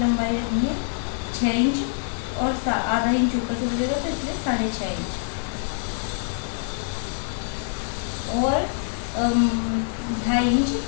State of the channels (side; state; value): right; silent; 56 dB below the other